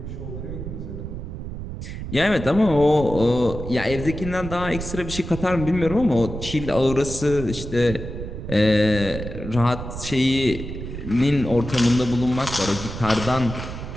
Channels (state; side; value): noise; right; rumble, 8 dB below the sound